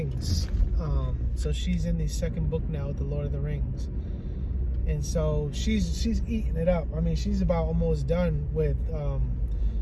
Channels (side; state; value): both; identical; correlation 1.00